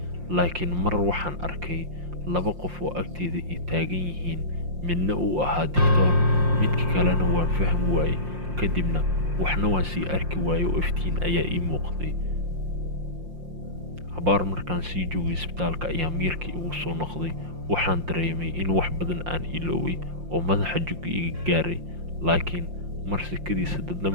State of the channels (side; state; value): left; late; 5.7 ms